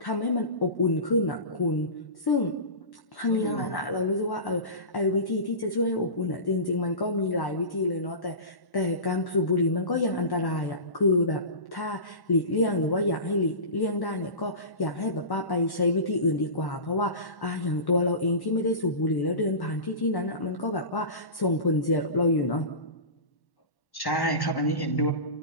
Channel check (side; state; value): right; late; 1.1 ms